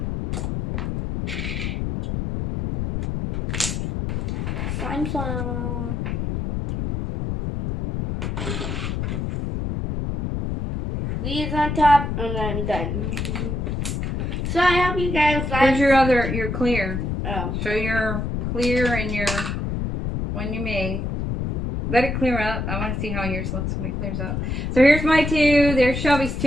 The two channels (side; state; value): left; noise; rumble, 2 dB below the sound